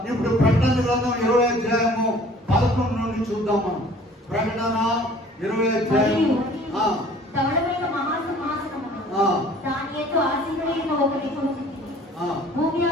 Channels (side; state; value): both; normal; correlation 0.51